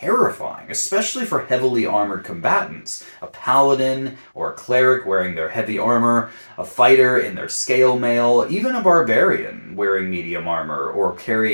especially for heavily armored combatants. A paladin or a cleric wearing their heavy armor, a fighter in their scale mail, even a barbarian wearing medium armor or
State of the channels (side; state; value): both; inverted; correlation -1.00